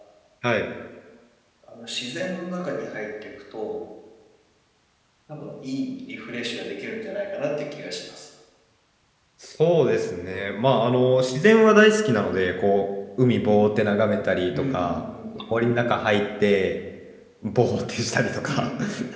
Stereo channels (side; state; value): both; identical; correlation 1.00